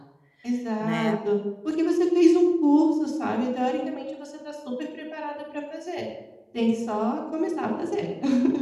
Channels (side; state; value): both; identical; correlation 1.00